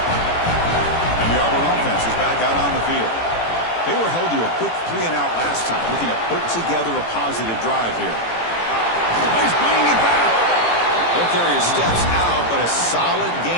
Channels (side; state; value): right; late; 18 ms